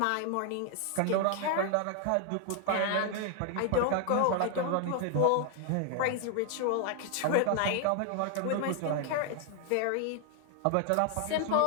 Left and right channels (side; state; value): both; different; correlation 0.00